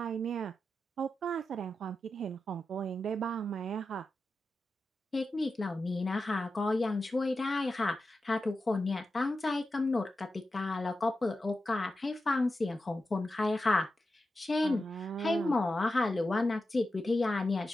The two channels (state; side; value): normal; both; correlation 0.90